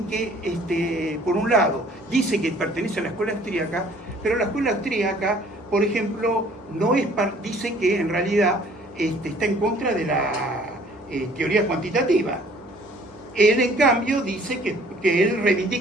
que, por un lado, dice que pertenece a la escuela austríaca, pero la escuela austríaca, por ejemplo, dice que en realidad está en contra de la teoría cuantitativa. Él, en cambio, dice que él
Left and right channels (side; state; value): both; normal; correlation 0.55